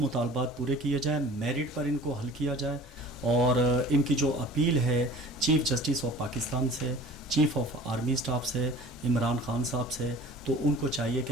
पूरे किए जाएँ, मेरिट पर इनको हल किया जाए, और इनकी जो अपील है चीफ़ जस्टिस ऑफ पाकिस्तान से, चीफ़ ऑफ आर्मी स्टाफ से, इमरान खान साहब से, तो उनको चाहिए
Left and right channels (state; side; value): normal; both; correlation 0.44